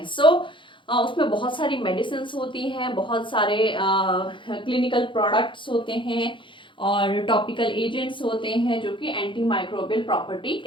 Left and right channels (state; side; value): late; right; 0.24 ms